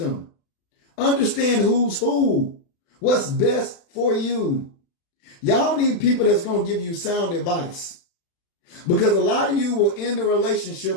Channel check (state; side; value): late; right; 36 ms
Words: Understand who's who. What's best for you. Y'all need people that's going to give you sound advice. Because a lot of you will end a